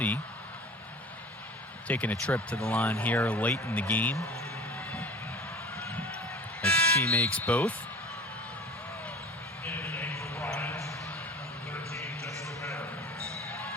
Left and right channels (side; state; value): both; normal; correlation 0.40